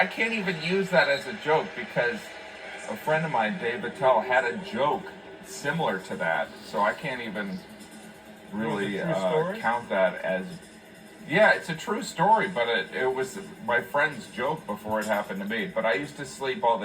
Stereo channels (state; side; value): identical; both; correlation 1.00